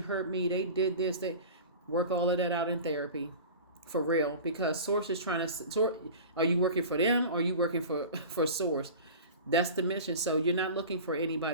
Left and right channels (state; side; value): inverted; both; correlation -0.36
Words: hurt me, they did this, they work all of that out in therapy. For real, because Source is trying to sort. Are you working for them or are you working for Source? That's the mission. So you're not looking for